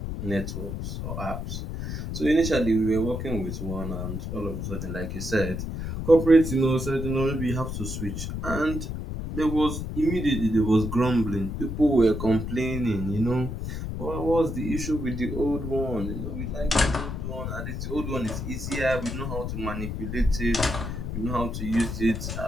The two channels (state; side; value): noise; left; rumble, 5 dB below the sound